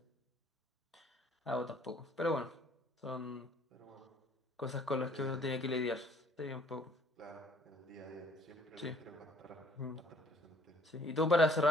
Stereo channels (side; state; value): both; normal; correlation 0.59